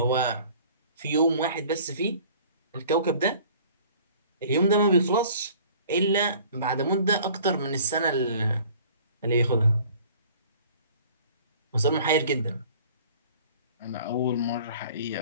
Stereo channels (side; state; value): both; inverted; correlation -0.50